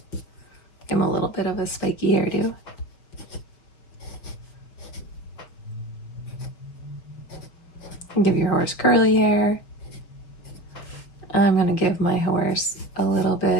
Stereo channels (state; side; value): late; right; 5.9 ms